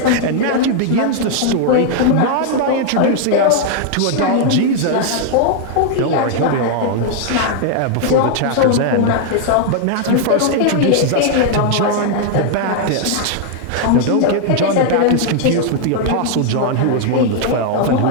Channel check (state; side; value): different; both; correlation 0.00